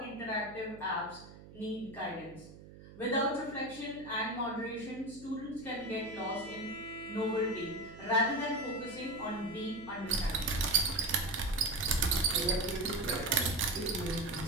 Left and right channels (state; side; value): noise; right; hum, 18 dB below the sound